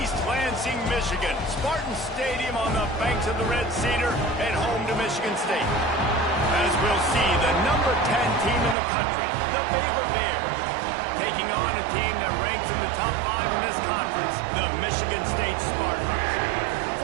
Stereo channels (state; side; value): drops out; left; at 8.8 s